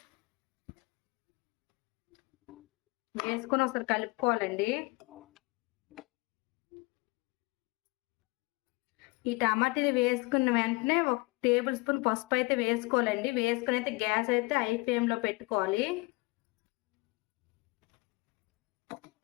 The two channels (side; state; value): right; quieter; 25.4 dB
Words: వేసుకొని ఒకసారి కలుపుకోవాలండి. ఈ టమాటాలు వేసుకున్న వెంటనే 1 టేబుల్ స్పూన్ పసుపు అయితే వేసుకోవాలండి. వేసుకుని అయితే గ్యాస్ అయితే హై ఫ్లేమ్లో పెట్టుకోవాలి.